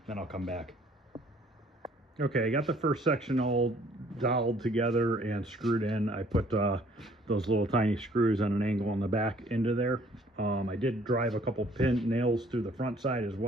then I'll come back. Okay, I got the first section all doweled together and screwed in. I put those little tiny screws on an angle on the back into there. I did drive a couple pin nails through the front side as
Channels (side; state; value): both; normal; correlation 0.59